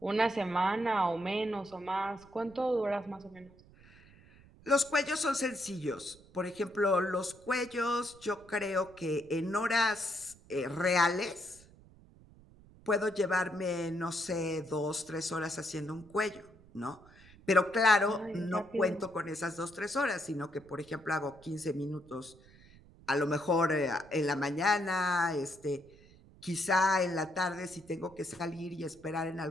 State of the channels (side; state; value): right; noise; rumble, 24 dB below the sound